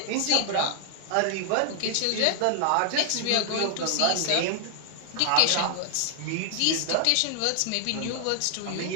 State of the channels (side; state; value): both; different; correlation 0.00